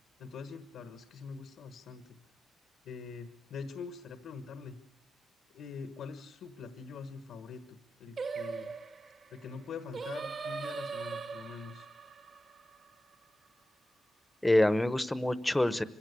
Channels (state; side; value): normal; both; correlation 0.94